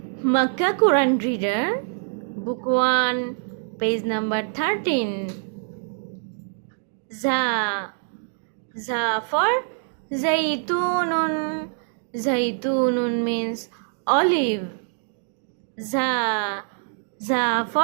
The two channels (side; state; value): left; silent; 62 dB below the other